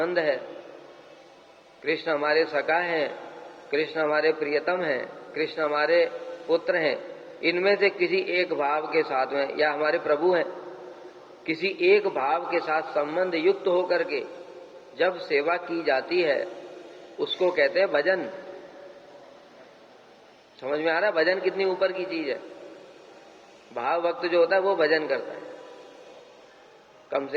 है, कृष्ण हमारे सखा हैं, कृष्ण हमारे प्रियतम हैं, कृष्ण हमारे पुत्र हैं, इनमें से किसी एक भाव के साथ में, या हमारे प्रभु हैं, किसी एक भाव के साथ संबंध युक्त होकर के जब सेवा की जाती है उसको कहते हैं भजन। समझ में आ रहा है भजन कितनी ऊपर की चीज है? भाव भक्त जो होता है वो भजन करता है, कम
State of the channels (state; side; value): identical; both; correlation 1.00